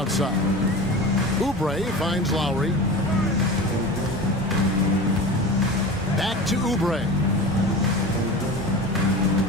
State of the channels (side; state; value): both; normal; correlation 0.32